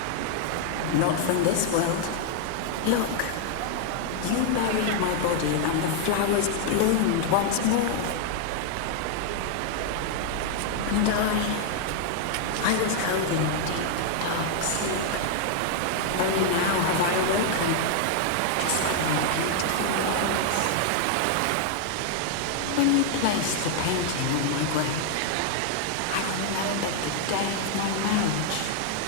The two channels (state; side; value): different; both; correlation 0.00